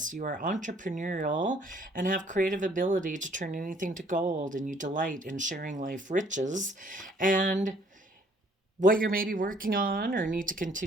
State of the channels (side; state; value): both; normal; correlation 0.61